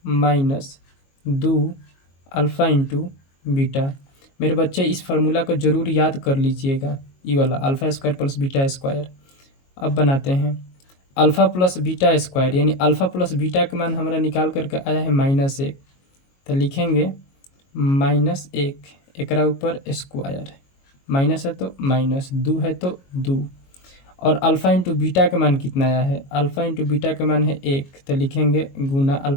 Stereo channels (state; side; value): late; right; 22 ms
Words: minus 2 alpha into beta. मेरे बच्चे इस फार्मूला को ज़रूर याद कर लीजिएगा, ये वाला alpha square plus beta square. अब बनाते हैं अल्फ़ा प्लस बीटा स्क्वायर, यानी अल्फ़ा प्लस बीटा का मान हमारा निकाल करके आया है -1, तो लिखेंगे -1 एकरा ऊपर स्क्वायर, माइनस है तो माइनस, 2 है तो 2, और अल्फ़ा इंटू बीटा का मान कितना आया है, अल्फ़ा इंटू बीटा का मान है 1, तो लिखेंगे गुना